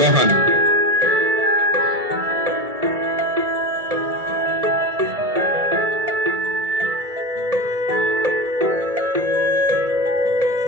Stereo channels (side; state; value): left; late; 2.2 ms